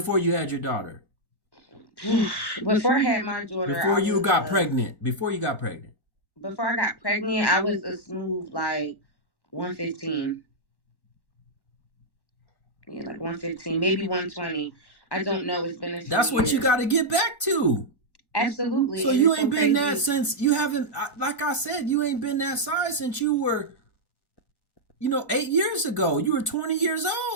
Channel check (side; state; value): right; late; 1.1 ms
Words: you had your daughter? Before I had my daughter, before you got pregnant. Before you got pregnant. Before I got pregnant, I was a smooth like 115. Yeah, like 115, maybe 120. I don't know. It's been a few That's what years. you got to get back to. Absolutely. So and you ain't been that since you haven't. Like I said, you ain't been that size since you were, 8 years ago. You were 20 years